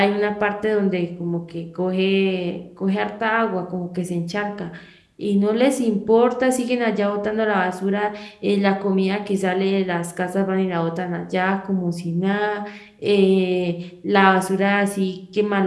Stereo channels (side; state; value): both; identical; correlation 1.00